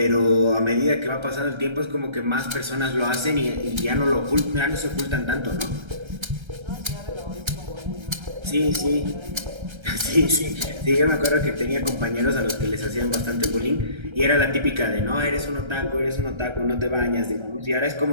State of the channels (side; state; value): left; late; 1.3 ms